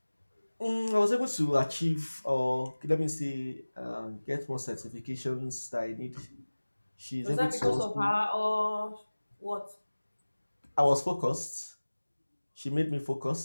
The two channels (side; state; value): both; inverted; correlation -1.00